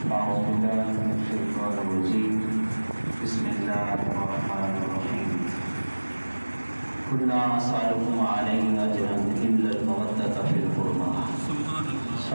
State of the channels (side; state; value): both; inverted; correlation -1.00